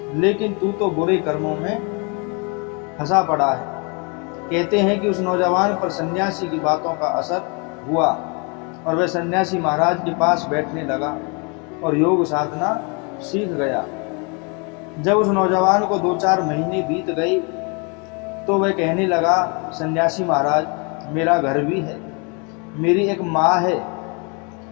लेकिन तू तो बुरे कर्मों में फंसा पड़ा है। कहते हैं कि उस नौजवान पर सन्यासी की बातों का असर हुआ और वह सन्यासी महाराज के पास बैठने लगा और योग साधना सीख गया। जब उस नौजवान को 2-4 महीने बीत गए तो वह कहने लगा, सन्यासी महाराज, मेरा घर भी है, मेरी एक माँ है,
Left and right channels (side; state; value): right; quieter; 33.5 dB